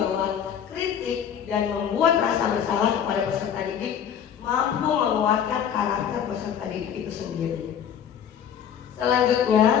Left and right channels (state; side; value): quieter; right; 8.6 dB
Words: kritik dan membuat rasa bersalah kepada peserta didik mampu menguatkan karakter peserta didik itu sendiri. Selanjutnya,